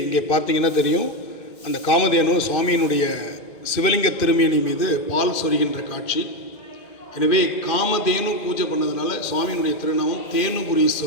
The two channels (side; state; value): right; late; 2.1 ms